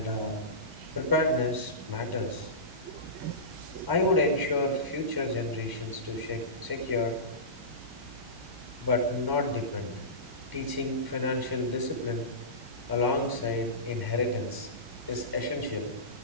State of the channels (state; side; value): late; left; 1.0 ms